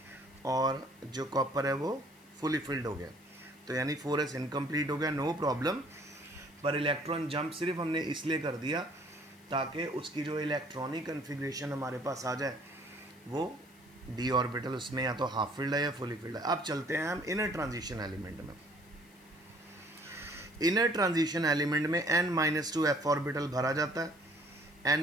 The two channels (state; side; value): noise; left; hiss, 28 dB below the sound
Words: और जो कॉपर है वो फुली फील्ड हो गया। तो यानी 4s इनकम्प्लीट हो गया, नो प्रॉब्लम। पर इलेक्ट्रॉन जंप सिर्फ हमने इसलिए कर दिया ताकि उसकी जो इलेक्ट्रॉनिक कन्फिग्रेशन हमारे पास आ जाए वो डी ऑर्बिटल उसमें या तो हाफ फील्ड है या फुली फील्ड है। अब चलते हैं हम इनर ट्रांजिशन एलिमेंट में। इनर ट्रांजिशन एलिमेंट में n-2 f ऑर्बिटल भरा जाता है,